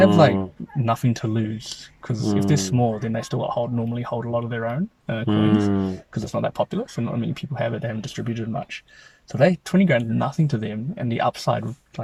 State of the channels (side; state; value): both; identical; correlation 1.00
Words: like nothing to lose, because if they're small, then they still normally hold a lot of their own coins, because it's not that popular. So not many people have it. They haven't distributed much. So 20 grand is nothing to them, and the upside